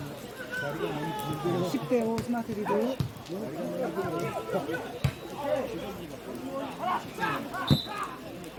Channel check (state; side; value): identical; both; correlation 1.00